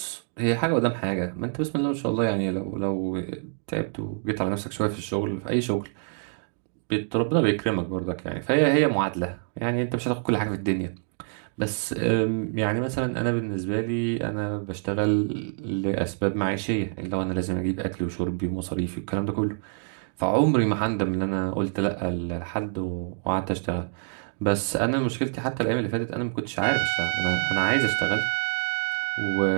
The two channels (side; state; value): left; silent; digital silence